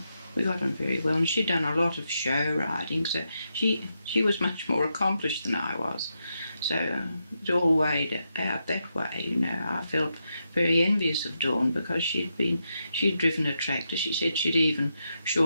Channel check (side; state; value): both; inverted; correlation -0.84